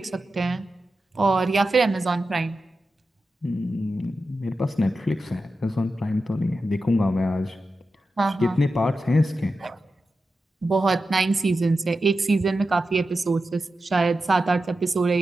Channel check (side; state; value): both; normal; correlation 0.91